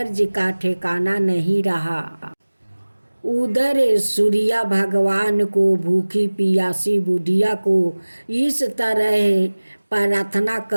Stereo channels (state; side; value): inverted; both; correlation -1.00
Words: का ठिकाना नहीं रहा। उधर सूर्य भगवान को भूखी प्यासी बुढ़िया को इस तरह प्रार्थना